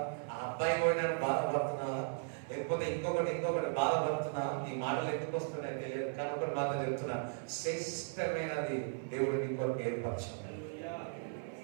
ఆ అబ్బాయి పోయిందని బాధపడుతున్నావా? లేకపోతే ఇంకొకటి బాధపడుతున్నావా? ఈ మాటలు ఎందుకు వస్తున్నాయి తెలియదు, కానీ ఒకటి మాట చెప్తున్నా, శ్రేష్టమైనది దేవుడు నీ కొరకు ఏర్పరచాడు.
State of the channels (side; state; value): left; silent; 53 dB below the other